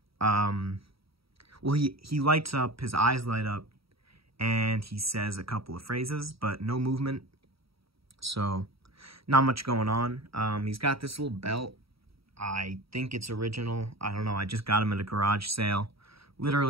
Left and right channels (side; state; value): left; late; 0.76 ms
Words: Well, he lights up, his eyes light up, and he says a couple of phrases, but no movement. So, not much going on. He's got this little belt. I think it's original. I don't know. I just got him at a garage sale